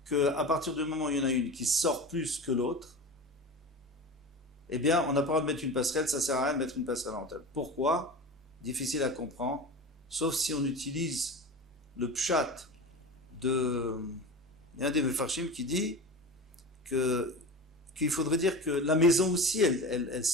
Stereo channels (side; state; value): both; normal; correlation 0.30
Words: qu'à partir du moment où il y en a une qui sort plus que l'autre, eh bien, on n'a pas le droit de mettre une passerelle, ça sert à rien de mettre une passerelle en tête. Pourquoi? Difficile à comprendre, sauf si on utilise le pshat de un des mefarshim qui dit qu'il faudrait dire que la maison aussi, elle